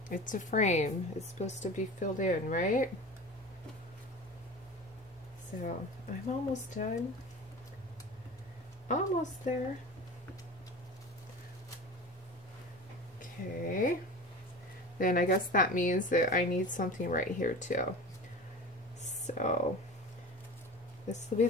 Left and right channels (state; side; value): normal; both; correlation 0.34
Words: It's a frame. It's supposed to be filled in, right? So, I'm almost done. Almost there. Okay. Then I guess that means that I need something right here too. So, this will be